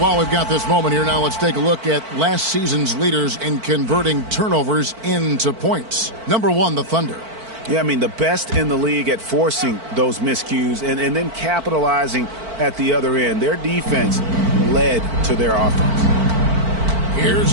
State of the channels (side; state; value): left; late; 4.5 ms